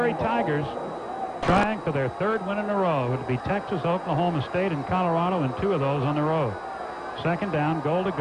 Tigers trying for their 3rd win in a row. It would be Texas, Oklahoma State, and Colorado, and 2 of those on the road. Second down, goal to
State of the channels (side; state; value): both; identical; correlation 1.00